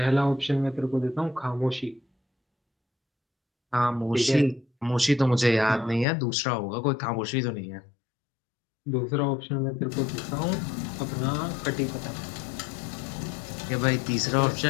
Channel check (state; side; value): drops out; right; at 6.1 s